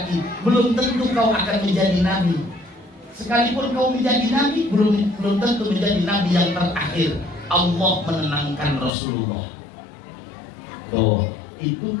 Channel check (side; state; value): right; drops out; at 9.0 s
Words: belum tentu kau akan menjadi Nabi. Sekalipun kau menjadi Nabi, belum tentu menjadi Nabi yang terakhir. Allah menenangkan Rasulullah. Tuh, itu